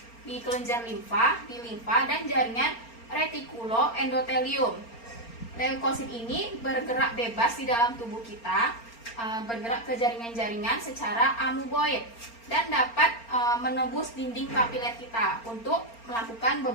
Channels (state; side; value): late; right; 4.3 ms